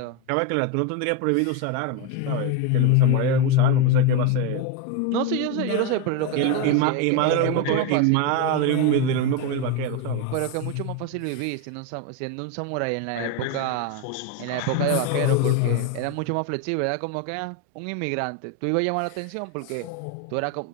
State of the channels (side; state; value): both; different; correlation 0.02